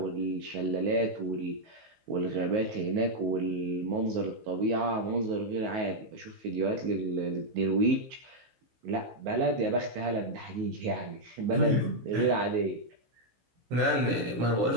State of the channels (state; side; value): late; left; 15 ms